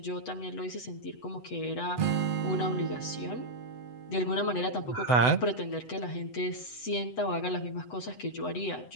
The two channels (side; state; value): right; late; 8.0 ms